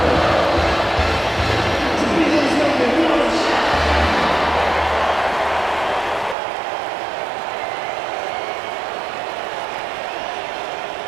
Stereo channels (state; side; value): drops out; left; at 6.4 s